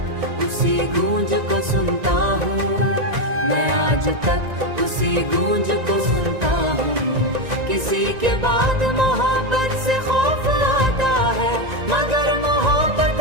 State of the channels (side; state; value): left; late; 1.9 ms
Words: उसी गूंज को सुनता हूँ। मैं आज तक उसी गूंज को सुनता हूँ। किसी के बाद मोहब्बत से खौफ आता है, मगर मोहब्बत